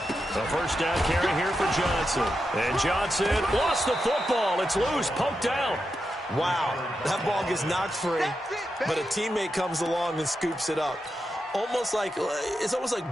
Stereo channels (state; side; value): normal; both; correlation 0.87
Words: A 1st down carry here for Johnson. And Johnson lost the football. It's loose, poked out. Wow, that ball gets knocked free. but a teammate comes along and scoops it up. It's almost like